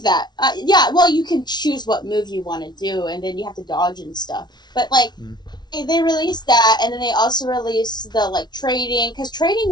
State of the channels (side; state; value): right; late; 0.20 ms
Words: that. Yeah, well, you can choose what move you want to do, and then you have to dodge and stuff. But like, Mm. they released that, and then they also released the like trading, because trading